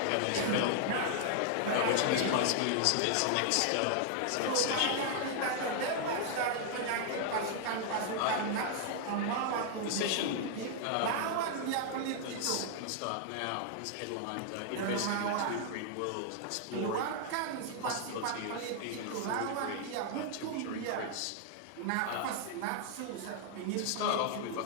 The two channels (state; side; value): different; both; correlation 0.00